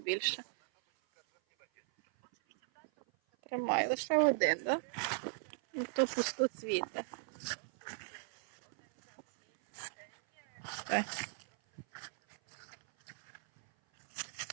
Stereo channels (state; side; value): silent; left; 53 dB below the other